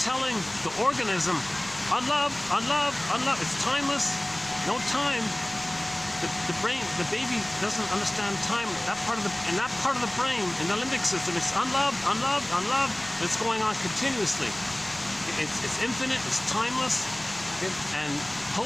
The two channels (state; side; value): noise; left; rumble, 23 dB below the sound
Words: the organism, unloved, unloved, unloved. It's timeless, no time. The brain, the baby doesn't understand time. In that part of the brain, in the limbic system, it's unloved, unloved, unloved. It's going on continuously. It's infinite. It's timeless. And